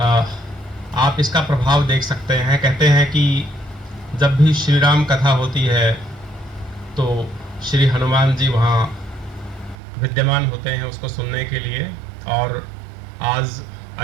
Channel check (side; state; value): left; drops out; at 9.8 s